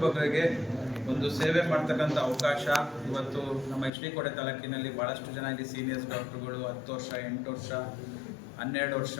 ಬಗ್ಗರಿಗೆ ಒಂದು ಸೇವೆ ಮಾಡ್ತಕ್ಕಂಥ ಅವಕಾಶ ಇವತ್ತು ನಮ್ಮ HD ಕೋಟೆ ತಾಲೂಕಿನಲ್ಲಿ ಭಾಳಷ್ಟು ಜನ ಇಲ್ಲಿ ಸೀನಿಯರ್ಸ್ ಡಾಕ್ಟ್ರುಗಳು 10 ವರ್ಷ 8 ವರ್ಷ 12 ವರ್ಷ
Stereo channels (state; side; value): drops out; right; at 3.9 s